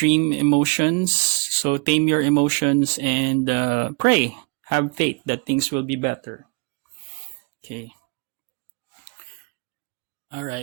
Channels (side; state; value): left; quieter; 33.9 dB